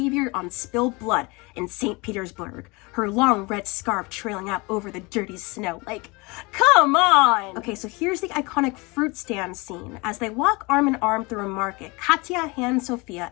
on Spilled Blood in St. Petersburg, her long red scarf trailing out over the dirty snow. Like, come on! Okay, so here's the iconic fruit stand scene. As they walk arm in arm through a market, Katya hands Sophia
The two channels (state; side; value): quieter; right; 26.1 dB